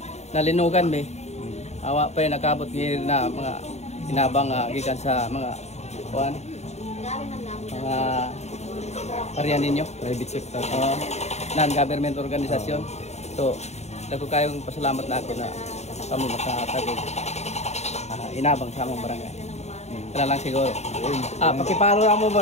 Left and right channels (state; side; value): late; right; 0.32 ms